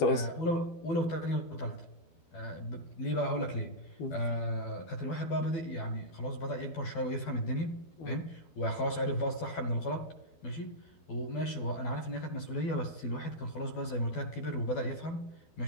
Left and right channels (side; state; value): right; late; 12 ms